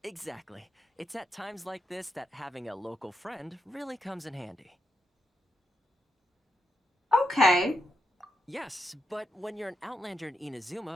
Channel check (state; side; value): normal; both; correlation 0.84